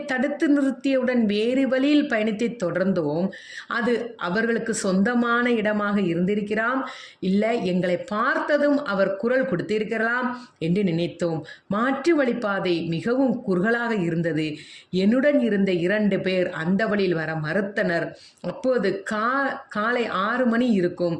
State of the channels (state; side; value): identical; both; correlation 1.00